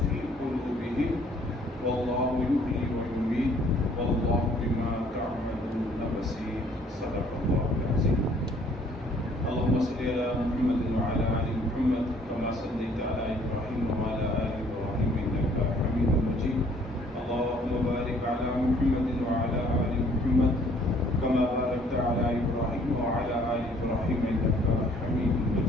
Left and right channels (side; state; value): both; normal; correlation 0.59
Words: في قلوبهم والله يحيي ويميت والله بما تعملون بصير صدق الله العظيم. اللهم صل على محمد وعلى آل محمد كما صليت على إبراهيم وعلى آل إبراهيم إنك حميد مجيد. اللهم بارك على محمد وعلى آل محمد كما باركت على إبراهيم وعلى آل إبراهيم إنك حميد